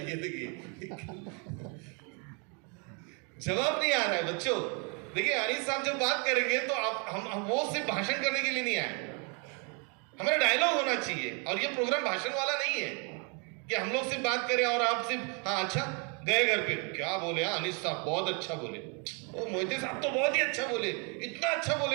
देखिए जवाब नहीं आ रहा है बच्चों। देखिए अनीस साहब जब बात करेंगे तो आप हम वो सिर्फ भाषण करने के लिए नहीं आए, हमारा डायलॉग होना चाहिए। और ये प्रोग्राम भाषण वाला नहीं है कि हम लोग सिर्फ बात करें और आप सिर्फ हाँ अच्छा गए घर पे क्या बोले, हाँ अनीस साहब बहुत अच्छा बोले, ओ मोहिते साहब तो बहुत ही अच्छा बोले, इतना अच्छा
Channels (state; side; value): quieter; left; 35.3 dB